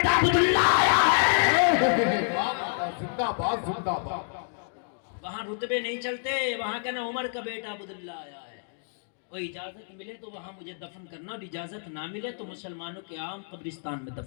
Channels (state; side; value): silent; right; digital silence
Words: عبداللہ آیا ہے۔ زندہ باد زندہ باد۔ وہاں رتبے نہیں چلتے، وہاں کہنا عمر کا بیٹا عبداللہ آیا ہے۔ اور اجازت ملے تو وہاں مجھے دفن کرنا، اور اجازت نہ ملے تو مسلمانوں کے عام قبرستان میں